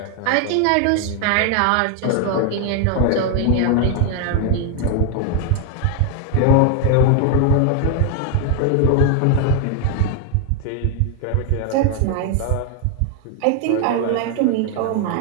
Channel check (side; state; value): both; different; correlation 0.00